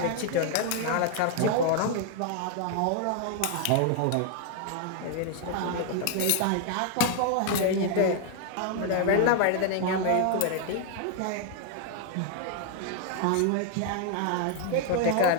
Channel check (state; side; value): different; both; correlation 0.00